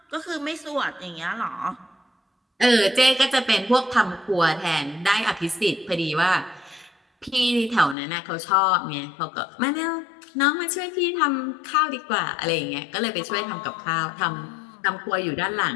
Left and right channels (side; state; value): right; drops out; at 8.0 s